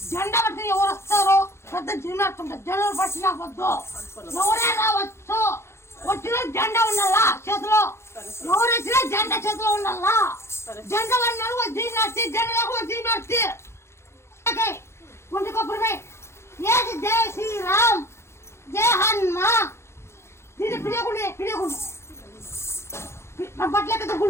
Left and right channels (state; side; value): late; right; 0.13 ms